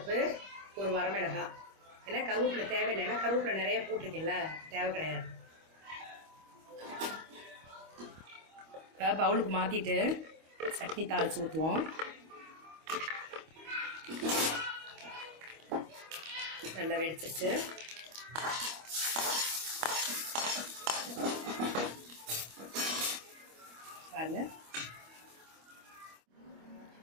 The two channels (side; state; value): left; late; 25 ms